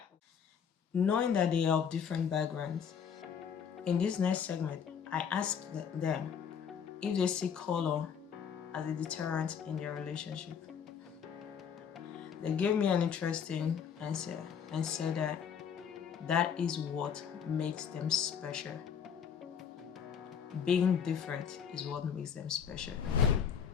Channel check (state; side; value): quieter; right; 7.4 dB